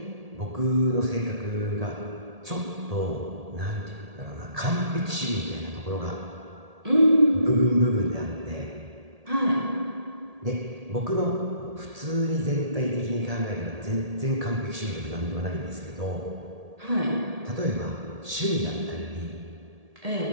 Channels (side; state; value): left; late; 1.8 ms